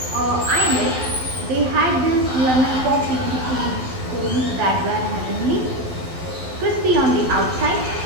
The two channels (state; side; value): late; left; 12 ms